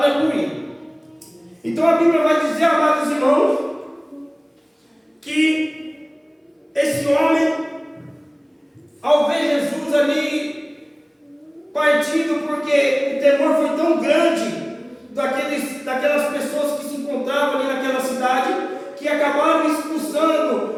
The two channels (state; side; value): identical; both; correlation 1.00